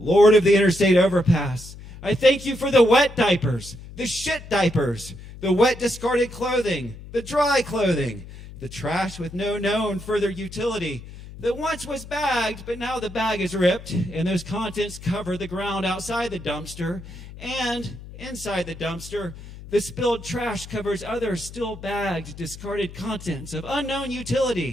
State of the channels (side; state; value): left; noise; hum, 15 dB below the sound